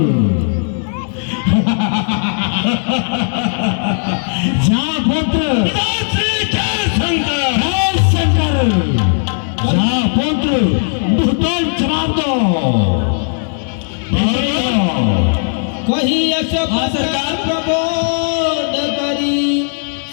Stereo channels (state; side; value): silent; right; 61 dB below the other